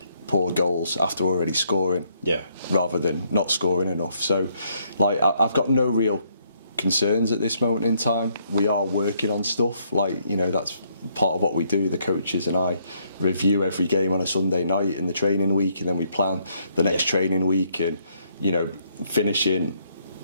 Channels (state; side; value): inverted; both; correlation -0.71